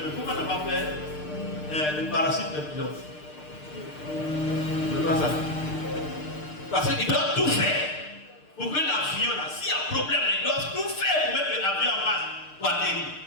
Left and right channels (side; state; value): right; late; 6.6 ms